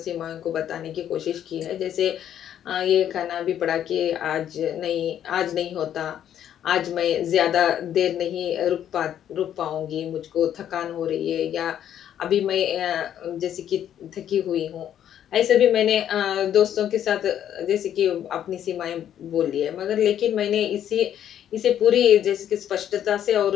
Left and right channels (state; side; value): quieter; right; 10.3 dB